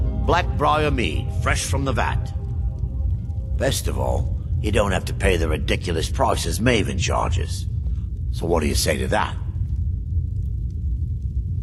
Blackbriar mead, fresh from the vat. Best of all, you don't have to pay the ridiculous prices Maven charges. So what do you say to that?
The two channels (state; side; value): identical; both; correlation 1.00